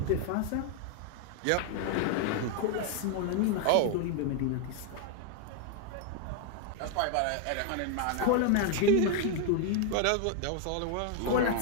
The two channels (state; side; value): different; both; correlation 0.00